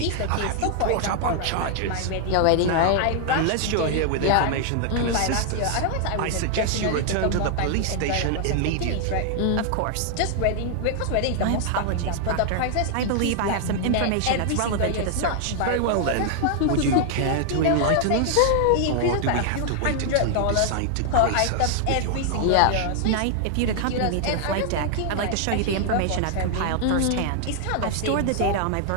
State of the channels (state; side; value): different; both; correlation 0.00